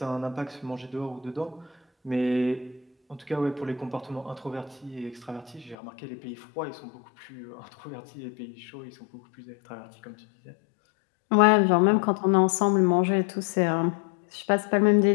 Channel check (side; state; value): right; drops out; at 5.8 s